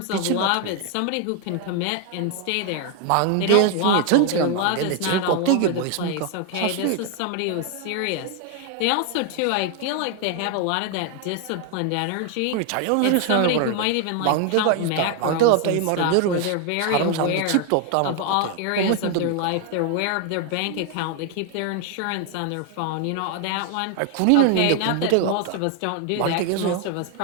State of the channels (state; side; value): different; both; correlation 0.01